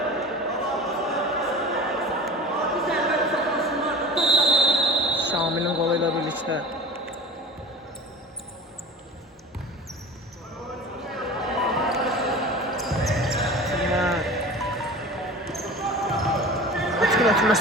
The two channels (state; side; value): normal; both; correlation 0.37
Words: Şamilin qolu ilə birlikdə.